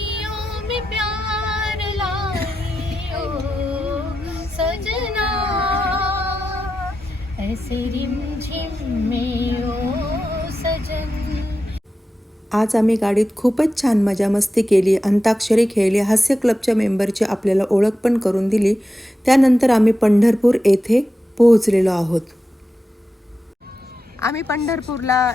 में प्यार लाई ओ सजना, ऐसे रिमझिम में ओ सजन. आज आम्ही गाडीत खूपच छान मजा मस्ती केली, अंताक्षरी खेळली, हास्य क्लबच्या मेंबरची आपल्याला ओळख पण करून दिली. त्यानंतर आम्ही पंढरपूर येथे पोहोचलेलो आहोत. आम्ही पंढरपूरला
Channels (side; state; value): both; normal; correlation 0.90